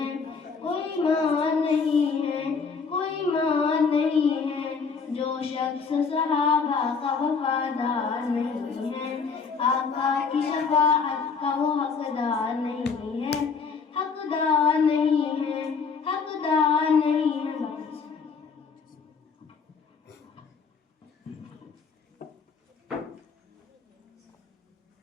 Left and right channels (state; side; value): quieter; right; 5.3 dB